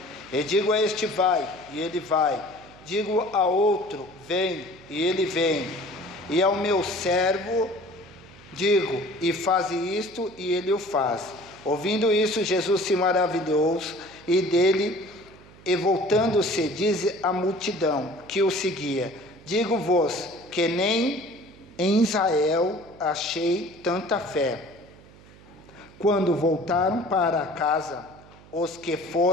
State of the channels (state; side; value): noise; right; hum, 23 dB below the sound